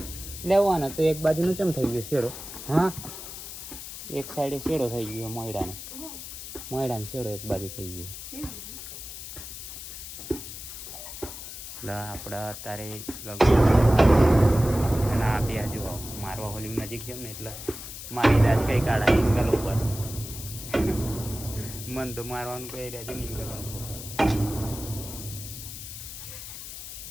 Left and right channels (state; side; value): noise; left; hiss, 10 dB below the sound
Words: લેવાનો તો એક બાજુનું ચમ થઈ ગયું શેડો. હા, એક સાઈડે શેડો થઈ ગયો મોયડાનો શેડો એક બાજુ થઈ ગયો. એટલે આપણે અત્યારે આ બે જો મારવા હોલી નજીક જેમ ને એટલે મારી દાજ કઈ કાઢા ઇંગલ ઉપર મન તો મારવાનું કઈ રહ્યા છે ને ઇંગલવાનું.